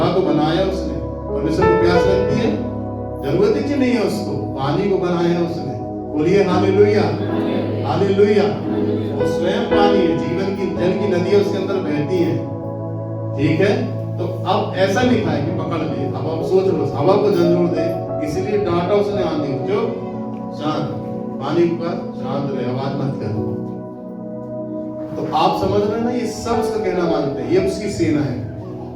को बनाया उसने, परमेश्वर को प्यास लगती है? जरूरत ही नहीं है उसको। पानी को बनाया उसने। बोलिए हालेलुया, हालेलुया। वो स्वयं पानी है, जीवन की जल की नदियां उसके अंदर बहती हैं। ठीक है, तो अब ऐसा लिखा है कि पकड़ ले। अब आप सोच लो, हवा को झंझोड़ दे, इसीलिए डांटा उसने आंधी को, जो शांत, पानी पर शांत रहे, आवाज मत कर। तो आप समझ रहे हैं ना, ये सब उसका कहना मानते हैं, ये उसकी सेना है।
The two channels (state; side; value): identical; both; correlation 1.00